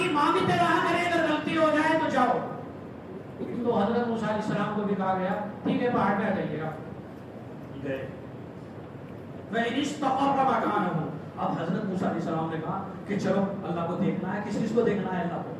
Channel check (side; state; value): both; identical; correlation 1.00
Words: مانگتے رہا کریں, اگر غلطی ہو جائے تو جاؤ. تو حضرت موسیٰ علیہ السلام کو بھی کہا گیا ٹھیک ہے پہاڑ پہ آ جائیے گا. گئے. وَإِنِ اسْتَقَرَّ مَكَانَهُ, اب حضرت موسیٰ علیہ السلام نے کہا کہ چلو اللہ کو دیکھنا ہے. کس چیز کو دیکھنا ہے؟ اللہ کو.